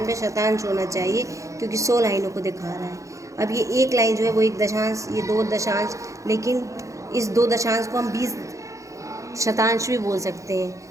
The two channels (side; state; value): left; late; 0.15 ms